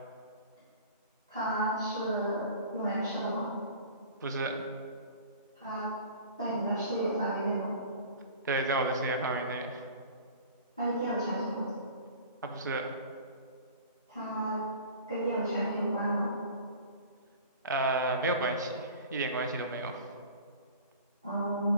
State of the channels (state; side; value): inverted; both; correlation -0.42